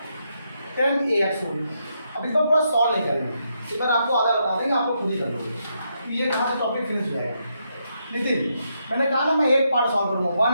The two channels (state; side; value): inverted; both; correlation -0.80